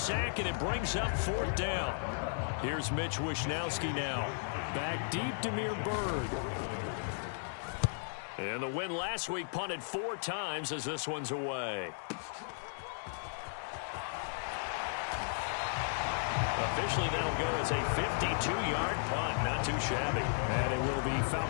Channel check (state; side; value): silent; right; digital silence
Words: and it brings up 4th down. Here's Mitch Wishnowski now. Back deep, Demir Bird. And the win last week punted 4 times as this one's away. Officially, that'll go as a 52-yard punt. Not too shabby. And it will be